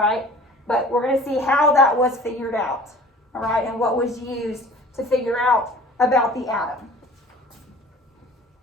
But we're going to see how that was figured out, all right, and what was used to figure out about the atom.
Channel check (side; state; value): both; normal; correlation 0.46